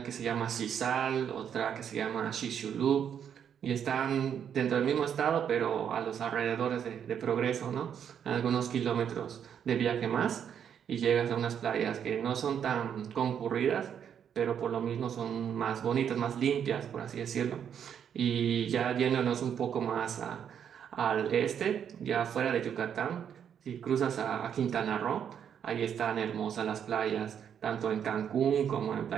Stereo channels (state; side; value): quieter; left; 8.4 dB